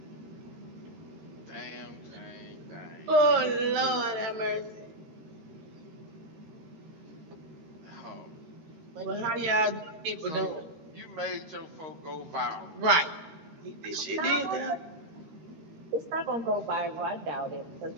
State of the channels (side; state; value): left; late; 13 ms